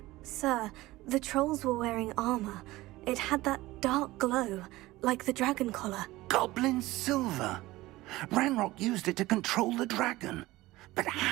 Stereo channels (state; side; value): quieter; left; 18.4 dB